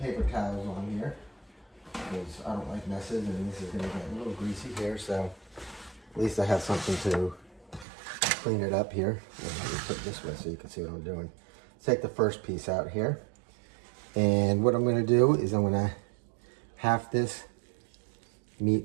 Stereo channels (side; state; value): left; drops out; at 7.9 s